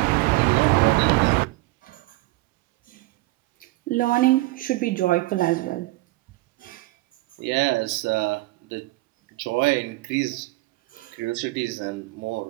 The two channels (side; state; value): left; quieter; 20.6 dB